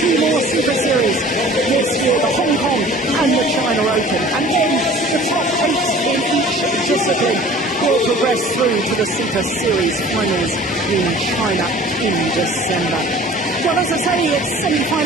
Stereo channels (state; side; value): normal; both; correlation 0.46